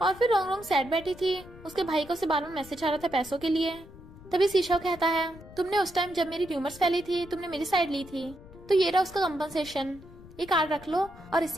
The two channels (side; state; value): left; noise; rumble, 19 dB below the sound